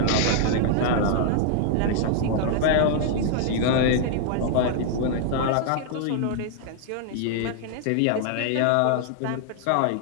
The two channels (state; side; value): different; both; correlation -0.01